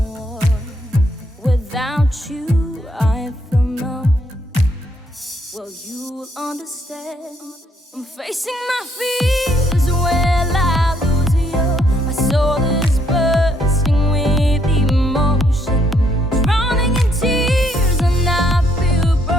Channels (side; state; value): both; normal; correlation 0.71